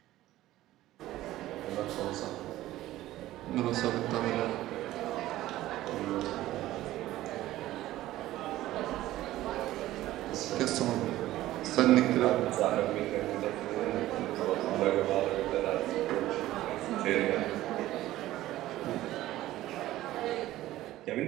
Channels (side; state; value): left; quieter; 15.3 dB